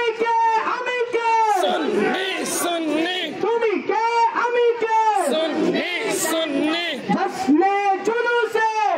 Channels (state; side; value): identical; both; correlation 1.00